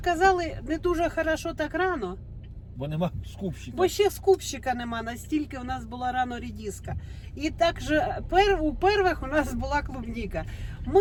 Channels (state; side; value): identical; both; correlation 1.00